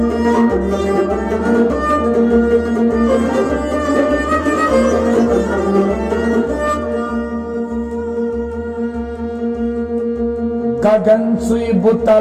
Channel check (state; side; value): identical; both; correlation 1.00